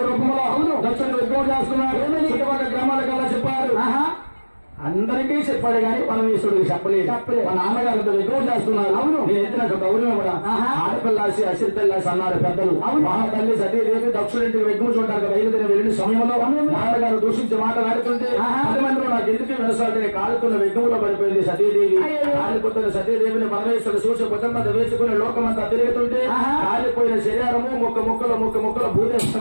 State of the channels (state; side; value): inverted; both; correlation -1.00